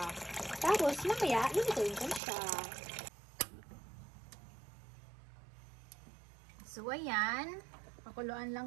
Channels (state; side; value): drops out; left; at 2.2 s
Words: Tapos, mamaya, ilutuin ko siya. So, ayan. Pakuluan